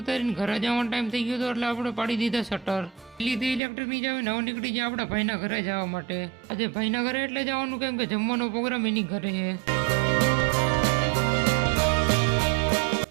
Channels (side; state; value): left; drops out; at 3.6 s